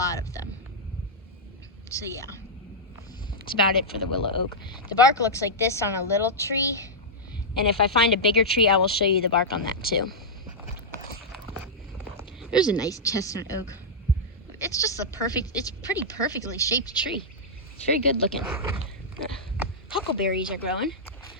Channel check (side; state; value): both; normal; correlation -0.08